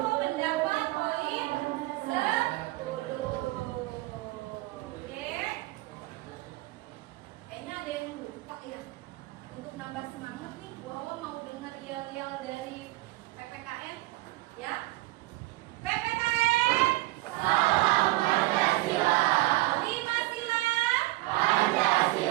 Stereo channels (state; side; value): quieter; left; 19.5 dB